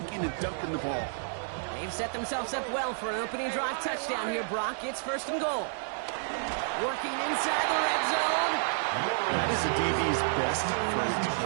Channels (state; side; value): silent; left; digital silence